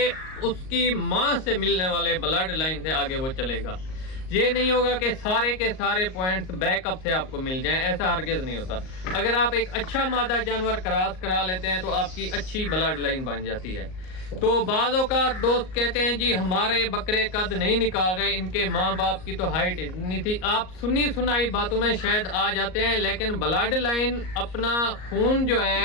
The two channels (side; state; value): right; late; 38 ms